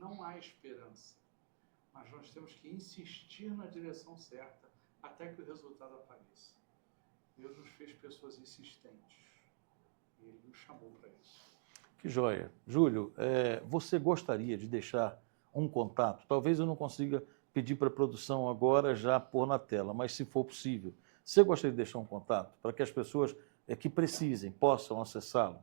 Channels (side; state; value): left; silent; digital silence